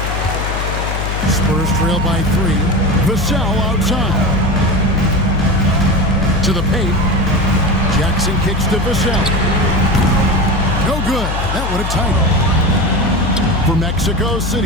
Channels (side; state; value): left; noise; hum, 3 dB below the sound